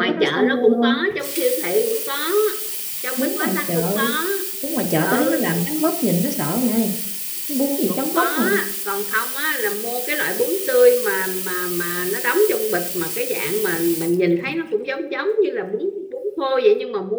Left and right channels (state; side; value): identical; both; correlation 1.00